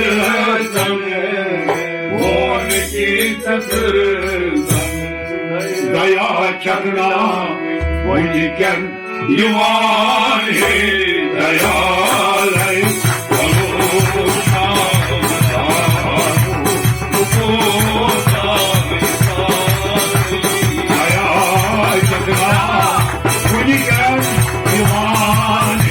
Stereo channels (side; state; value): both; identical; correlation 1.00